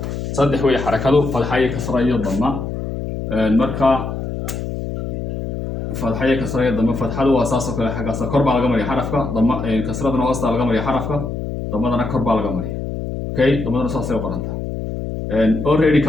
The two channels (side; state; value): left; noise; hum, 5 dB below the sound